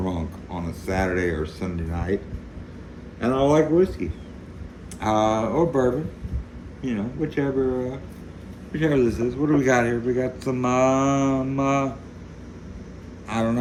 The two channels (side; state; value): both; identical; correlation 1.00